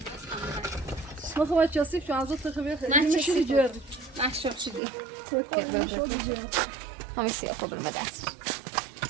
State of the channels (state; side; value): drops out; left; at 4.8 s